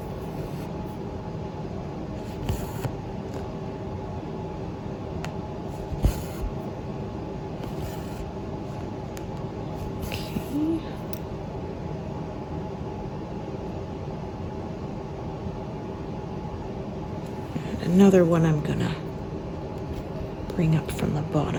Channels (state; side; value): identical; both; correlation 1.00